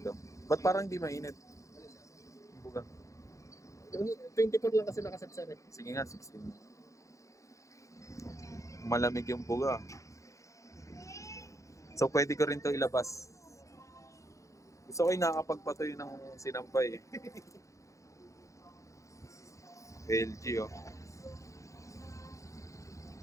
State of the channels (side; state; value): right; late; 0.15 ms